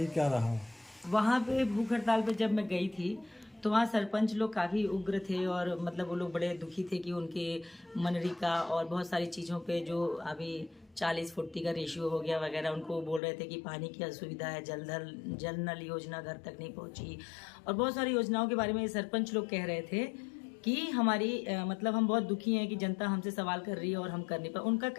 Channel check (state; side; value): drops out; right; at 13.2 s